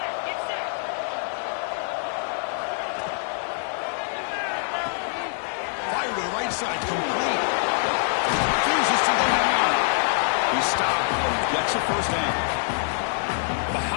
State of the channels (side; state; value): right; silent; digital silence